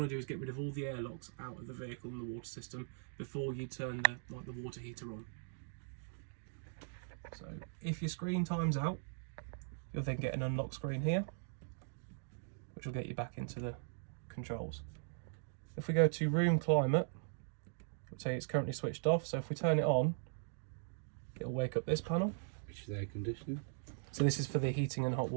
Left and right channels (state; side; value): silent; left; digital silence